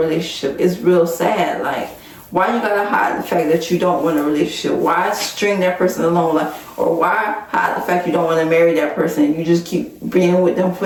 It's real sad. Like, why you gotta hide the fact that you don't want a relationship? Why string that person along? Like, or why hide the fact you don't want to marry that person? You just keep being with them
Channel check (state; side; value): identical; both; correlation 1.00